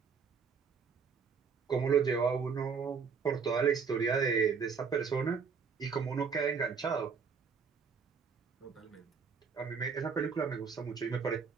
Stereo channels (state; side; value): quieter; left; 5.9 dB